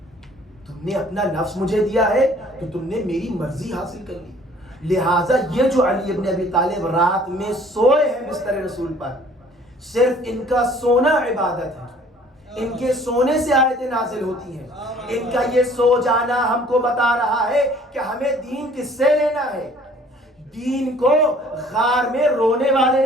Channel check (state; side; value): normal; both; correlation 0.55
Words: تم نے اپنا نفس مجھے دیا ہے تو تم نے میری مرضی حاصل کر لی۔ لہٰذا یہ جو علی ابن ابی طالب رات میں سوئے ہیں بستر رسول پر، صرف ان کا سونا عبادت ہے، ان کے سونے سے آیتیں نازل ہوتی ہیں، ان کا یہ سو جانا ہم کو بتا رہا ہے کہ ہمیں دین کس سے لینا ہے۔ دین کو غار میں رونے والے